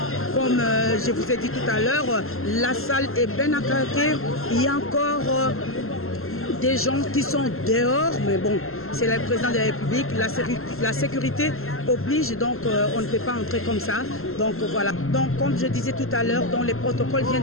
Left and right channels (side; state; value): right; late; 0.62 ms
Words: Comme je vous ai dit tout à l'heure, la salle est bien à craquer. Il y a encore des gens qui sont dehors, mais bon, c'est le président de la République, la sécurité oblige, donc on ne peut pas entrer comme ça. Donc voilà. Donc comme je disais tout à l'heure, les protocoles